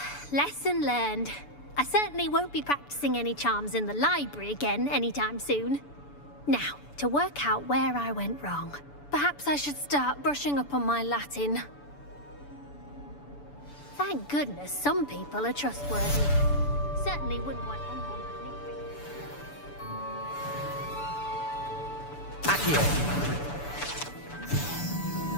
lesson learned. I certainly won't be practicing any charms in the library again anytime soon. Now, to work out where I went wrong. Perhaps I should start brushing up on my Latin. Thank goodness some people are trustworthy. Certainly wouldn't want anyone but me. Accio.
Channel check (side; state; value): right; late; 6.9 ms